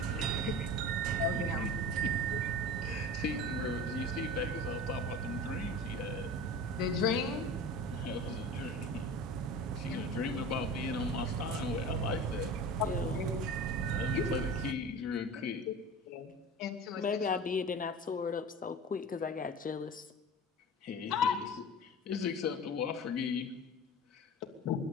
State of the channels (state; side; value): normal; both; correlation 0.34